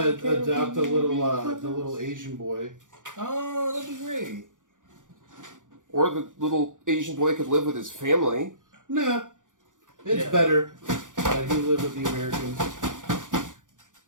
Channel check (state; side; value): late; left; 0.87 ms